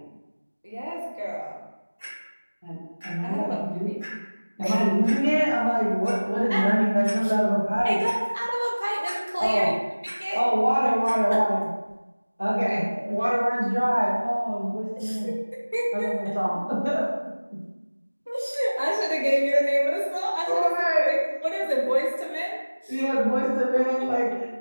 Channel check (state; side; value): inverted; both; correlation -1.00